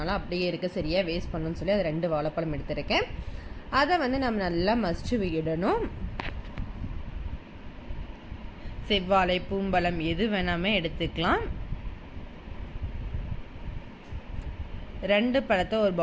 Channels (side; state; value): both; identical; correlation 1.00